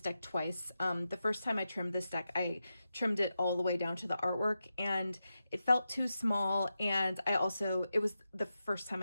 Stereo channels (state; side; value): inverted; both; correlation -0.90